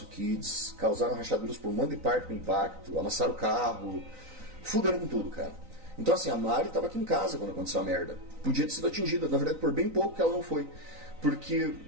kids, causaram rachaduras por um monte de parte com impacto, amassaram o carro, fuderam com tudo, cara. Então assim, a Mari estava aqui em casa quando aconteceu a merda. Podia ter sido atingida, na verdade por bem pouco que ela não foi. Porque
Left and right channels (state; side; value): late; left; 3.9 ms